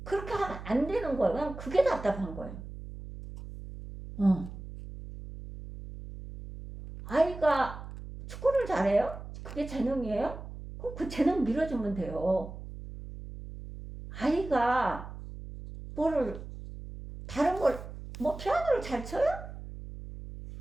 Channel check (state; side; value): noise; right; hum, 12 dB below the sound